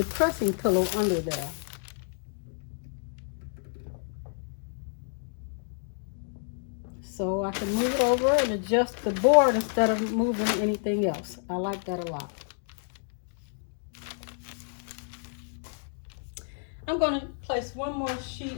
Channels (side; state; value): right; silent; digital silence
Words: pressing pillow under there. So I can move it over and adjust the board instead of moving anything else. I like that a lot. I'm going to place one more